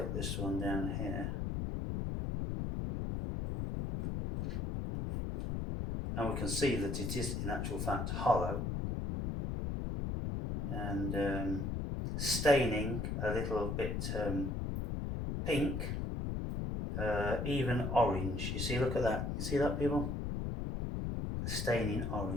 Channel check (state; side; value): noise; left; rumble, 2 dB below the sound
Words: this one down here, and we can see that it is in actual fact hollow and staining a little bit pink, even orange. You see, look at that. You see that, people? Staining